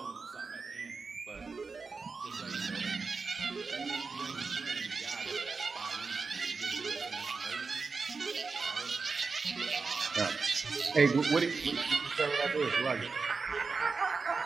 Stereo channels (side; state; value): left; quieter; 4.5 dB